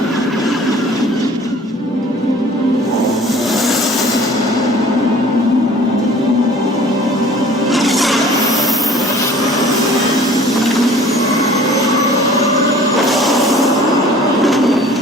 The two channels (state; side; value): normal; both; correlation 0.49